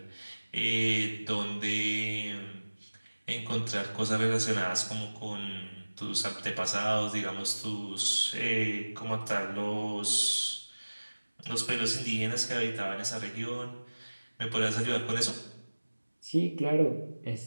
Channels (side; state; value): both; inverted; correlation -1.00